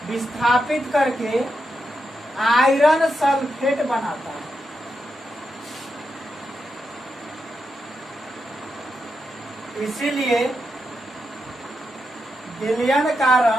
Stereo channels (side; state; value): both; normal; correlation 0.85